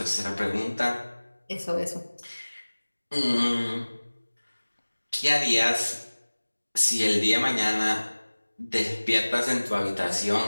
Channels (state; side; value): inverted; both; correlation -1.00